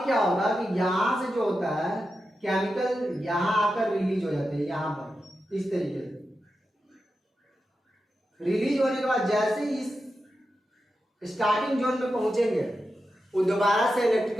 क्या होगा कि यहां से जो होता है केमिकल यहां आकर रिलीज हो जाते हैं, यहां पर इस तरीके से रिलीज होने के बाद जैसे इस स्टार्टिंग जोन में पहुंचेंगे वो दोबारा से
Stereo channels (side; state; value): both; normal; correlation 0.90